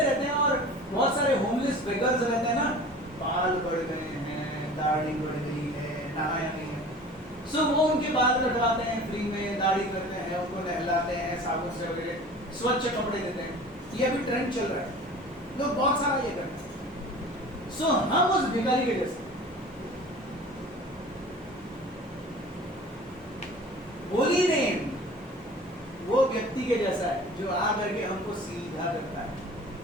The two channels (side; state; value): both; normal; correlation 0.42